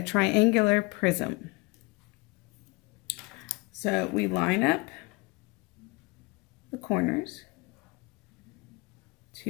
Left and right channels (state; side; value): quieter; right; 25.9 dB